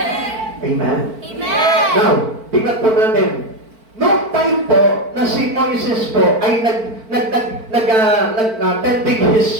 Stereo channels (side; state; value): left; late; 4.5 ms